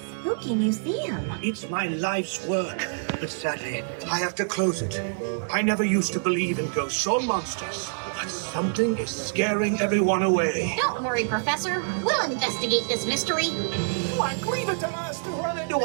museum. It's my life's work, but sadly, I have to close it. I never used to believe in ghosts or monsters, but something is scaring everyone away. Don't worry, Professor. We'll investigate this mystery. Like, leave it to us to run into a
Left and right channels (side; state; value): left; silent; digital silence